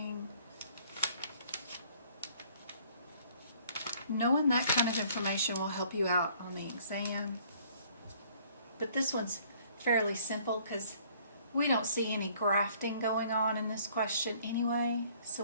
Knowing that kind of information will help you out on the exam. But this one's fairly simple because we don't see any grafting going on in this question anyway, so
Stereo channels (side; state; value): both; inverted; correlation -0.59